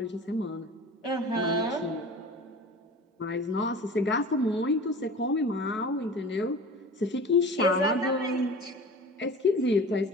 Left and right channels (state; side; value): normal; both; correlation 0.38